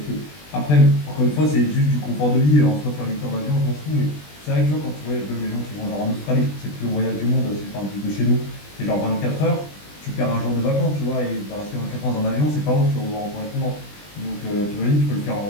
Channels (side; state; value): right; late; 20 ms